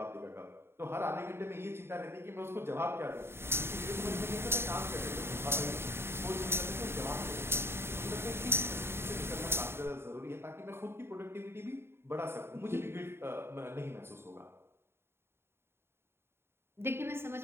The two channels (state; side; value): late; left; 0.12 ms